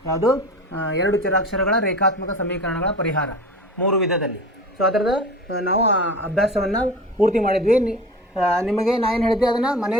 ಯಾವುದು? 2 ಚರಾಕ್ಷರಗಳ ರೇಖಾತ್ಮಕ ಸಮೀಕರಣಗಳ ಪರಿಹಾರ 3 ವಿಧದಲ್ಲಿ. ಸೊ ಅದರದ ನಾವು ಅಭ್ಯಾಸವನ್ನು ಪೂರ್ತಿ ಮಾಡಿದ್ವಿ. ನಿಮಗೆ ನಾನು ಏನು ಹೇಳಿದ್ದೆ, ಅದನ್ನು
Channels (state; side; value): normal; both; correlation 0.35